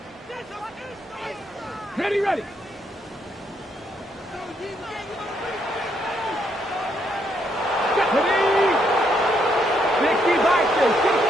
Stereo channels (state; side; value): normal; both; correlation 0.74